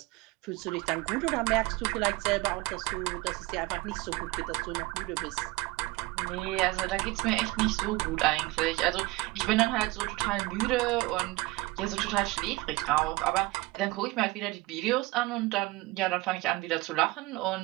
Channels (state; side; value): quieter; left; 21.7 dB